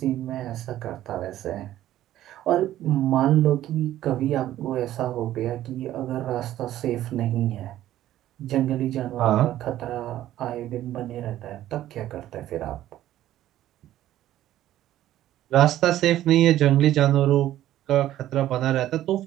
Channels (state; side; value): quieter; left; 13.3 dB